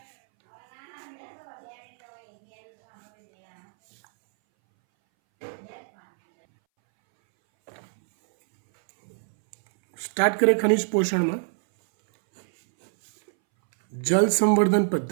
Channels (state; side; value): silent; left; 61 dB below the other